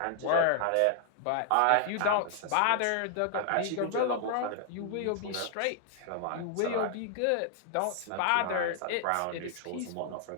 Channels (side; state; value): both; different; correlation 0.00